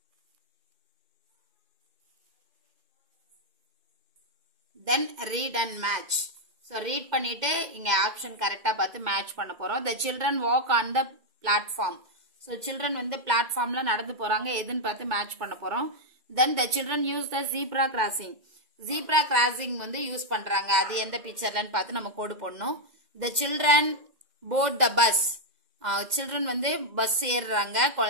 Then read and match. So read பண்ணிட்டு இங்க ஆப்ஷன் கரெக்டா பார்த்து மேட்ச் பண்ண போறோம். The children walk on the platform. So children வந்து பிளாட்ஃபார்ம்ல நடந்து போறாங்க, எதுன்னு பார்த்து மேட்ச் பண்ண போறோம். Then the children use the zebra crossing. Zebra crossing வந்து யூஸ் பண்றாங்க, அது எந்த பிக்சர்லன்னு பார்த்து நம்ம கோடு போடணும். The children board the bus. children வந்து பஸ் ஏறுறாங்க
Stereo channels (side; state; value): left; late; 2.0 ms